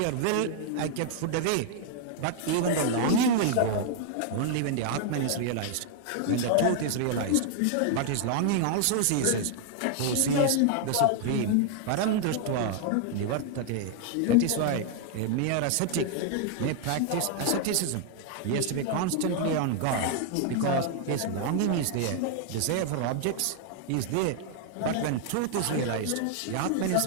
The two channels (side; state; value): both; different; correlation 0.00